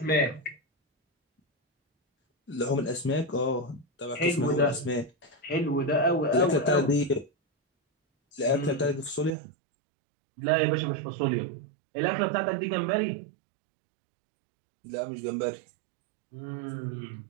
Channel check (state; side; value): drops out; left; at 9.3 s